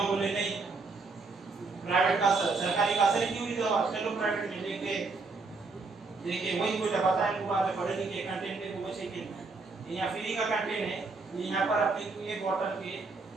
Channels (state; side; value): quieter; left; 4.0 dB